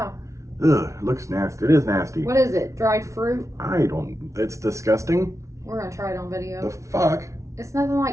Ugh, it looks nasty. It is nasty. What is it? Dried fruit? I don't. It's disgusting. We're gonna try it on video. The fuck? It's nothing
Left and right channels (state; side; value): late; left; 0.14 ms